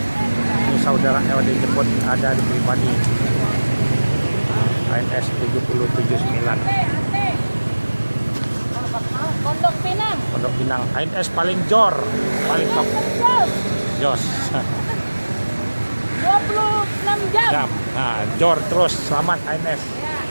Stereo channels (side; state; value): both; inverted; correlation -1.00